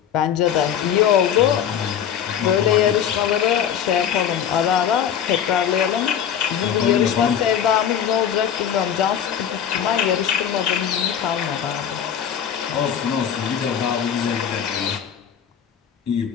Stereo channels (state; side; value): quieter; right; 8.8 dB